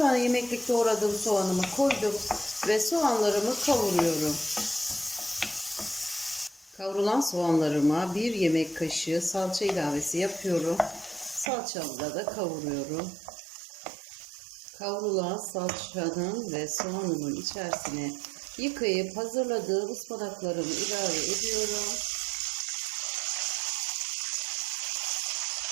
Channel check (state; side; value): drops out; left; at 11.5 s